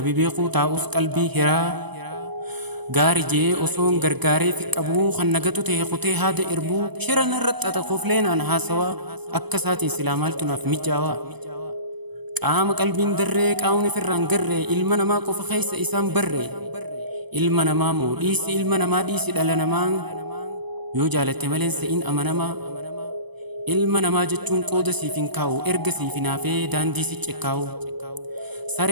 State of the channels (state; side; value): late; left; 0.99 ms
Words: beekuu taa'us qalbii hiraa. Gaari jee osoon gargaaree fi qabuu kan nagatu ta'e kutee haada irbuu shiran irratti xaxaqofleenaan haasawaa akka isaatiin silaa maaltu naaf mijaawaa. Qaama qalbiin darree qaamni ofirraan garree ilma namaa qofa keessa isaan barree. Ilma namaa moo dhiisi ilma namaa dhiisi dhala namaa yoo jaalatte maleen se'in amanamaa. Ilma namaa jechuun qooda siif hin kaa'u erga siif hin hafee daandii si cekkaawu.